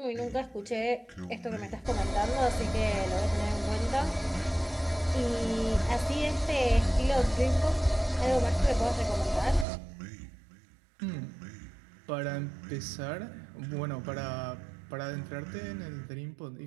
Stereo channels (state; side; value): drops out; left; at 9.7 s